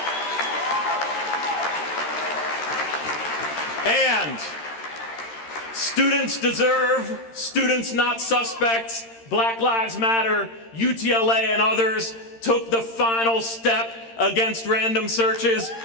Students deserve, students not suspects, Black Lives Matter, UTLA and others took the final step against random searches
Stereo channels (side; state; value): right; late; 13 ms